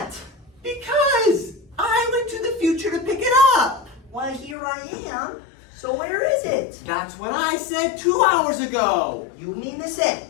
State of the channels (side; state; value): right; drops out; at 4.5 s